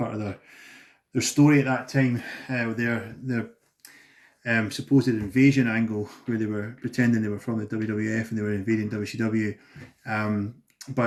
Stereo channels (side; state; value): both; identical; correlation 1.00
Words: of their story at that time, their supposed invasion angle, where they were pretending they were from the WWF and they were invading WCW.